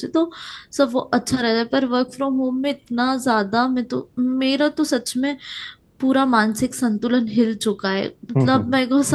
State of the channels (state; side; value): identical; both; correlation 1.00